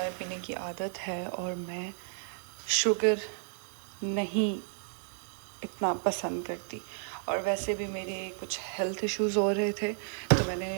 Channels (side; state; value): left; silent; 56 dB below the other